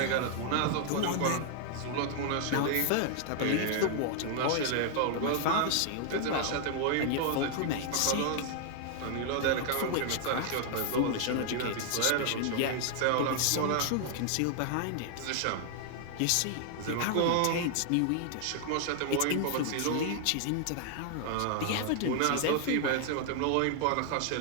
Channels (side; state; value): both; different; correlation 0.00